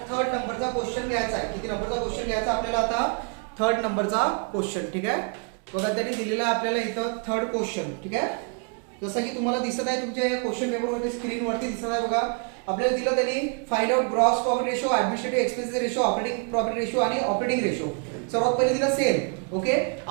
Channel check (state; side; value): quieter; left; 38.9 dB